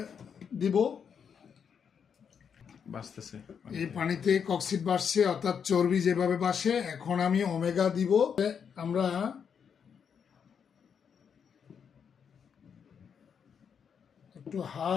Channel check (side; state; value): right; quieter; 7.1 dB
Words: দিব। বাঁচতেছে এই পানিতে কক্সিড বাসছে, অর্থাৎ চর্বি যেভাবে বাসে। এখন আমি ওমেগা দিব। আমরা একটু